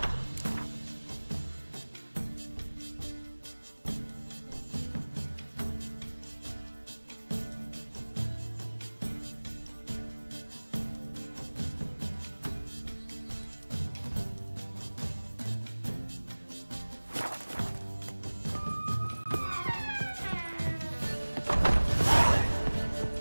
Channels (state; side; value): inverted; both; correlation -1.00